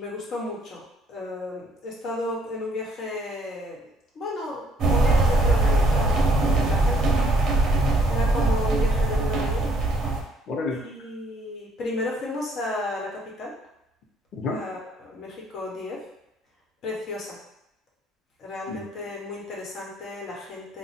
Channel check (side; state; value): both; normal; correlation 0.65